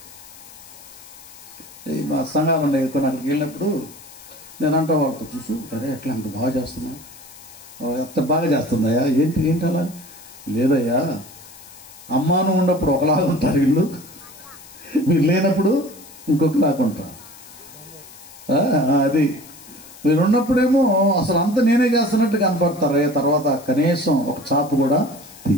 మా సంఘాలు ఉండే అక్కడికి వెళ్ళినప్పుడు నేను అంటా వాళ్ళతో, చూసు అరే ఎట్లా అంత బాగా చేస్తున్నా, ఎంత బాగా చేస్తుందయ్యా, ఏంటి అలా? లేదయ్యా, అమ్మాను ఉన్నప్పుడు ఒకలాగా ఉంటారు వీళ్ళు, మీరు లేనప్పుడు ఇంకొకలాగా ఉంటారు. అది మీరు ఉన్నప్పుడేమో అసలు అంత నేనే చేస్తున్నట్టు కనపడతారు, తర్వాత కనీసం ఒక చాపు కూడా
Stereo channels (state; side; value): noise; left; hiss, 20 dB below the sound